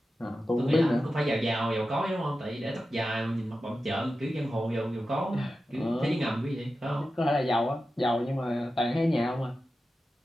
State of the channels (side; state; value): both; normal; correlation 0.92